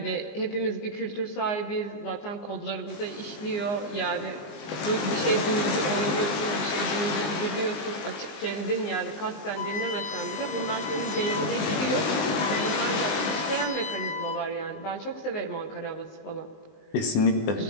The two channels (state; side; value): late; right; 19 ms